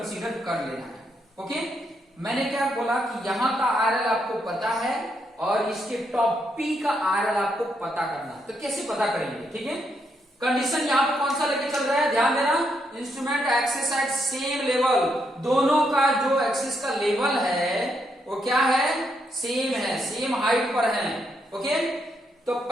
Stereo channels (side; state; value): both; normal; correlation 0.78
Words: कर लेना है। ओके, मैंने क्या बोला कि यहां का आरएल आपको पता है और इसके टॉप पी का आरएल आपको पता करना। तो कैसे पता करेंगे? ठीक है, कंडीशन यहां पे कौन सा लेके चल रहा है, ध्यान देना, instrument axis at same level. दोनों का जो एक्सिस का लेवल है वो क्या है, सेम है, सेम हाइट पर है। ओके, तो